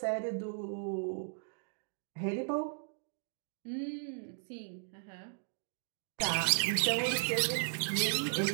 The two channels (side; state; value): left; silent; digital silence